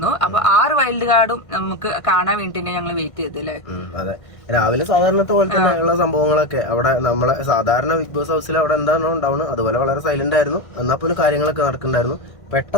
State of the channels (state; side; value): late; right; 1.6 ms